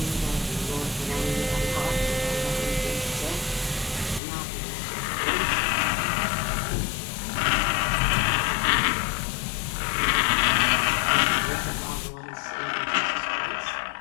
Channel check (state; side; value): drops out; right; at 4.2 s